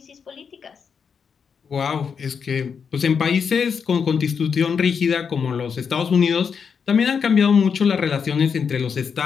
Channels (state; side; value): quieter; right; 6.4 dB